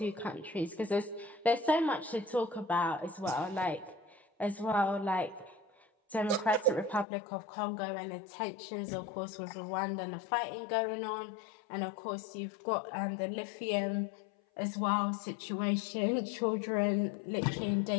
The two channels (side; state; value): right; drops out; at 7.1 s